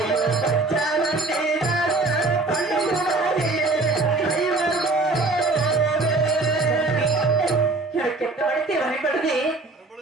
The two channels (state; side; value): quieter; left; 3.3 dB